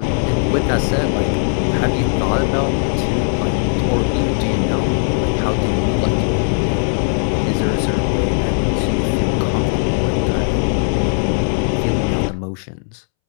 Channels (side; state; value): right; silent; 67 dB below the other